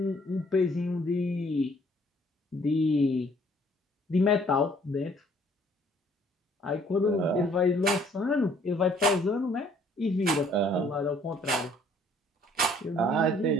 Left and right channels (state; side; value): normal; both; correlation 0.61